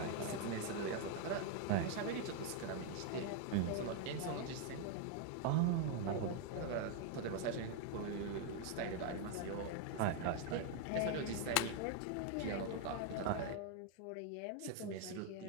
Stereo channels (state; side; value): different; both; correlation 0.01